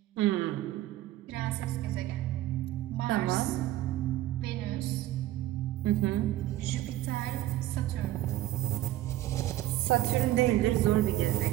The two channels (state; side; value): quieter; left; 14.5 dB